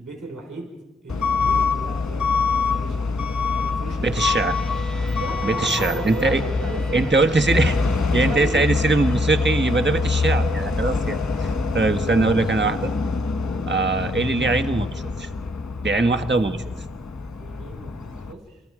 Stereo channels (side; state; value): both; normal; correlation 0.71